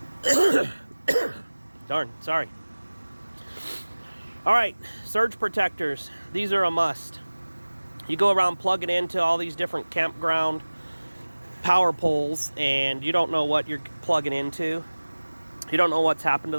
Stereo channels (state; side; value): inverted; both; correlation -1.00